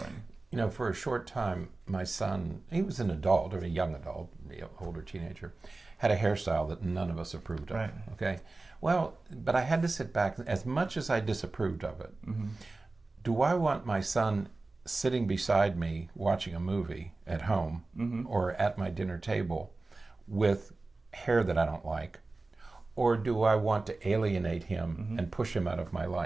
For a short time, my son, he was an adult, or a young adult, older teenager, had a hairstyle that none of us approved of. Right. Okay? Well, but I had to sit back, as much as I disapproved of it, do I want my son sitting beside me watching a movie at home or at my dinner table with hair that I don't like? Or do I want to alienate him and push him out of my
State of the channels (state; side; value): quieter; left; 3.3 dB